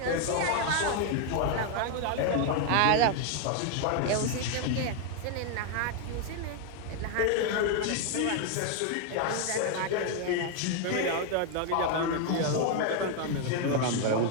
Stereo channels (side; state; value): both; different; correlation 0.00